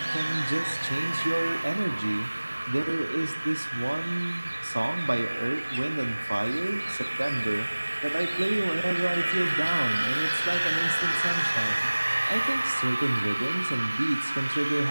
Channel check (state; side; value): inverted; both; correlation -1.00